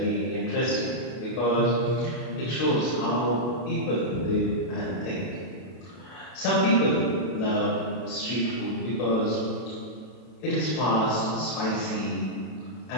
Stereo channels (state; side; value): late; right; 32 ms